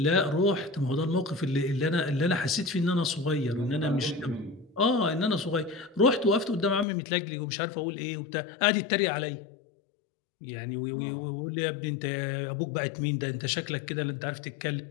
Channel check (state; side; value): drops out; right; at 6.9 s